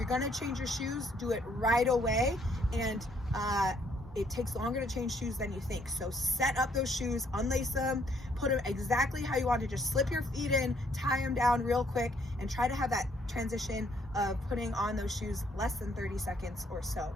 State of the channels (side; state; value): both; normal; correlation 0.67